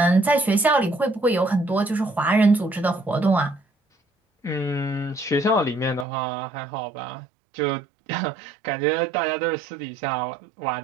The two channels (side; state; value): left; drops out; at 6.1 s